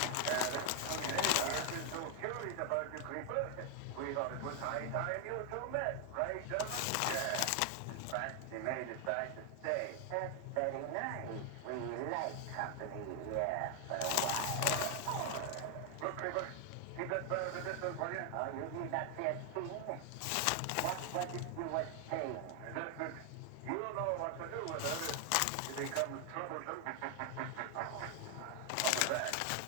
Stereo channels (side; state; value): both; different; correlation 0.00